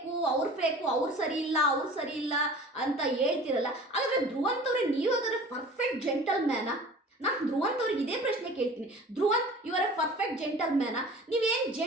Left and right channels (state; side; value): normal; both; correlation 0.42